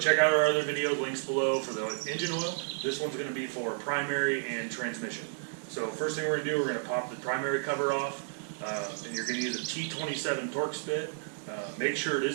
out our other video, links below for the engine oil. This one's going to be for primary and transmission. So first thing we're going to do, we're going to pop the primary cover off, and you're going to use a T27 torque spit. Make sure it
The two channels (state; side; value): silent; left; digital silence